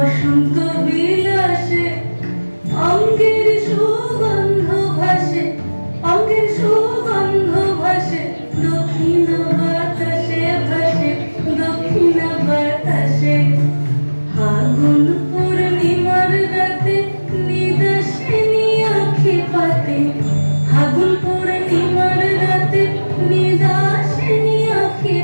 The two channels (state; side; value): inverted; both; correlation -1.00